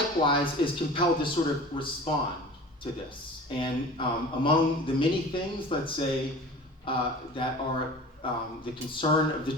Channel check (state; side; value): normal; both; correlation 0.39